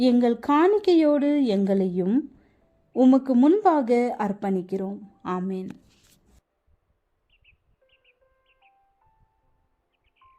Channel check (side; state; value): both; identical; correlation 1.00